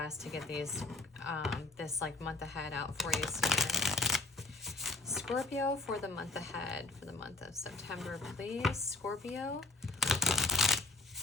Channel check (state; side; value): quieter; right; 3.3 dB